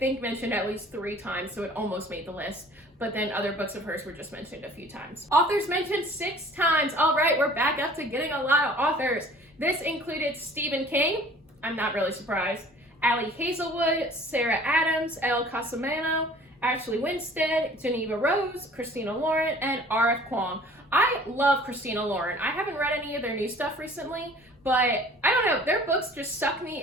mentioned at least 3 times, so it almost made the list. But then other books of hers were just mentioned a few times. Authors mentioned 6 times. All right, we're back up to getting a lot of authors. This included Stephen King. I'm not really surprised. Ali Hazelwood, Sarah Adams, Elle Casamano, Ashley Winstead, Geneva Rose, Christina Lauren, and R.F. Kuang. I love Christina Lauren. I haven't read any of their new stuff recently, but I don't know, their books just suck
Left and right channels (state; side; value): normal; both; correlation 0.49